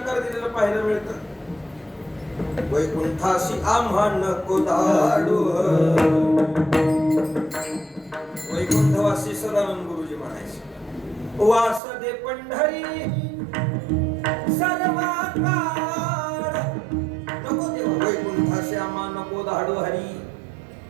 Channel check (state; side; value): drops out; left; at 11.8 s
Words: दिलेलं पाहायला मिळतं. वैकुंठाशी आम्हा नको धाडू. वैकुंठवासी सदानंद गुरुजी म्हणायचे, वास दे पंढरी सर्वा काळ. नको देवा वैकुंठाशी आम्हा नको धाडू हरी.